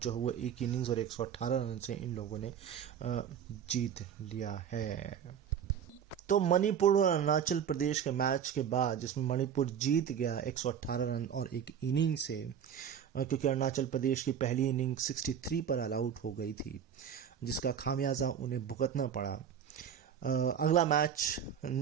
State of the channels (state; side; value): quieter; left; 8.4 dB